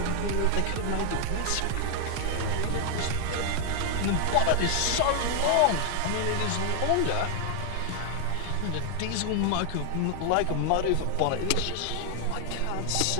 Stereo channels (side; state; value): both; different; correlation 0.00